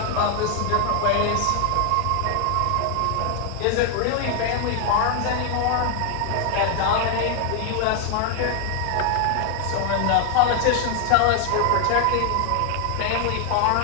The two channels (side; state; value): both; different; correlation 0.00